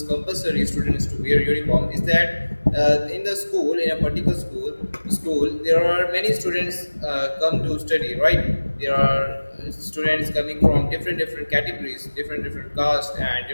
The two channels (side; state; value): both; inverted; correlation -1.00